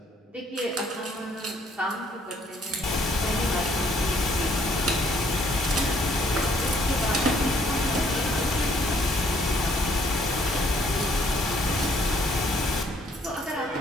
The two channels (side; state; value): both; normal; correlation 0.65